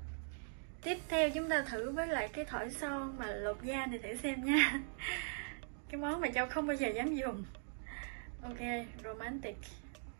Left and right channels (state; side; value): silent; left; digital silence